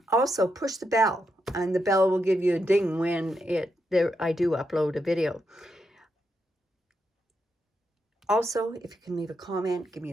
also push the bell, and the bell will give you a ding when I do upload a video. Also, if you can leave a comment, give me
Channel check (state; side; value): normal; both; correlation 0.83